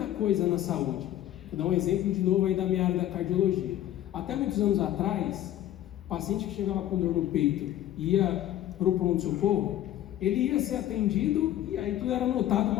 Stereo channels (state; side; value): quieter; right; 12.6 dB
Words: coisa na saúde. Vou dar um exemplo de novo aí da minha área da cardiologia. Até muitos anos atrás, o paciente que chegava com dor no peito e ia para o pronto-socorro, ele ia ser atendido e aí tudo era anotado